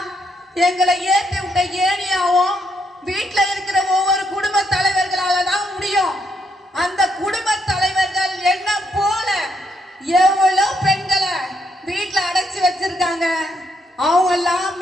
எங்களை ஏற்றி விட்ட ஏனியாவும் வீட்டுல இருக்கிற ஒவ்வொரு குடும்ப தலைவர்களால தான் முடியும். அந்த குடும்ப தலைவர்கள் என்ன போல எவ்வளவு பெண்களை வீட்டுல அடைச்சு வச்சிருக்காங்க. அவங்க எல்லாம்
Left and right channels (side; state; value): both; normal; correlation 0.76